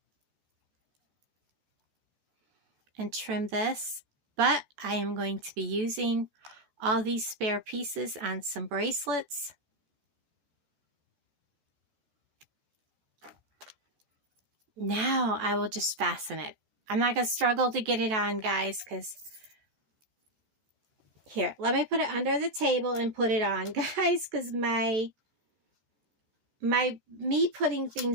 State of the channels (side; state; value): left; late; 14 ms